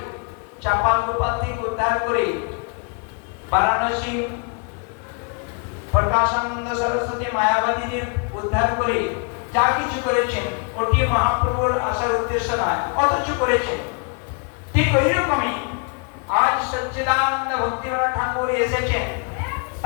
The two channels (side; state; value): right; quieter; 37.3 dB